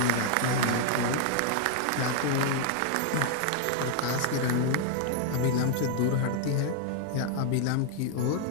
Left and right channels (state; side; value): different; both; correlation 0.00